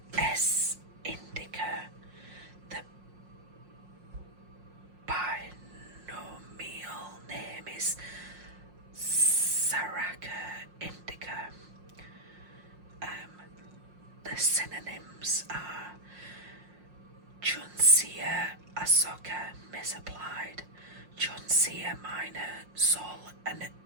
S. indica. The binomial name is Saraca indica. The synonyms are Juncea asoka misapplied, Juncea minor, Sol and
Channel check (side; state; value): left; late; 5.6 ms